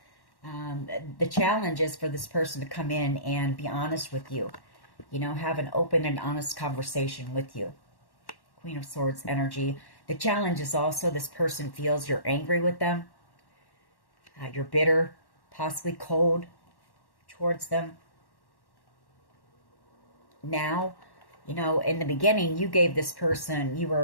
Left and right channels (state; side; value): late; right; 1.1 ms